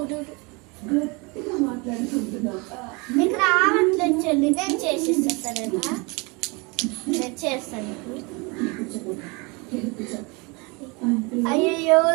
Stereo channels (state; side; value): quieter; left; 28.5 dB